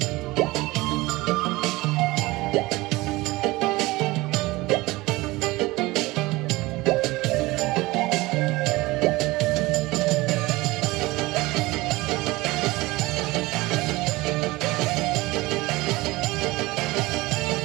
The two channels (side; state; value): left; quieter; 20.7 dB